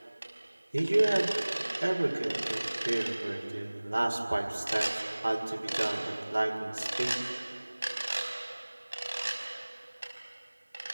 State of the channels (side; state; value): both; inverted; correlation -1.00